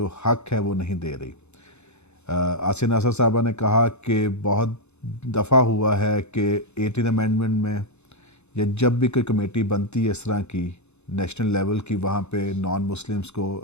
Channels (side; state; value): right; late; 0.81 ms